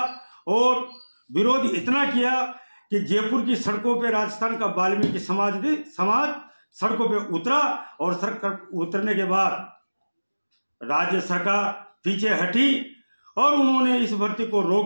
और विरोध इतना किया कि जयपुर की सड़कों पे राजस्थान का वाल्मीकि समाज सड़कों पे उतरा और सड़क उतरने के बाद राज्य सरकार पीछे हटी और उन्होंने इस भर्ती को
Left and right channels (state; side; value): inverted; both; correlation -1.00